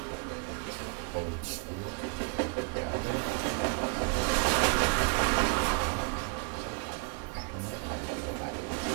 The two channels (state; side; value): quieter; left; 34.4 dB